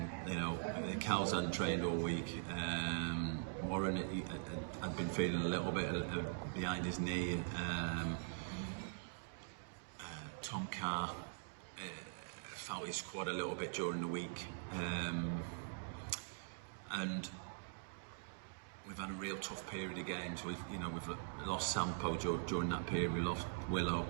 Cal's hadn't trained all week. Warren had been feeling a little bit behind his knee. Tom Carr felt his squad a little bit during the week, and we've had a real tough period of games. We've lost Sampo during that period. We lost Willow.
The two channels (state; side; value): silent; left; digital silence